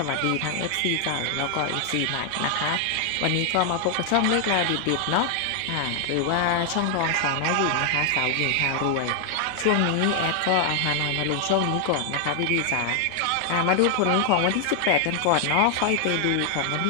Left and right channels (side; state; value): both; different; correlation 0.00